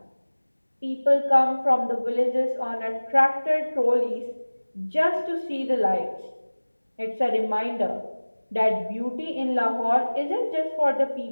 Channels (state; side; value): inverted; both; correlation -1.00